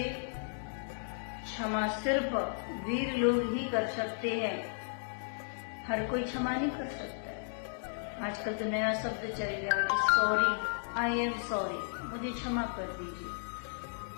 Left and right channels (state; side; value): silent; right; digital silence